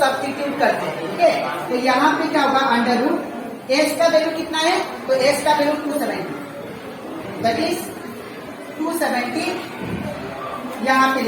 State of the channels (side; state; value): both; identical; correlation 1.00